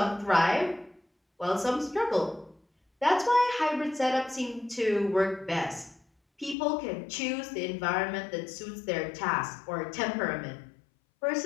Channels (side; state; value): right; drops out; at 6.6 s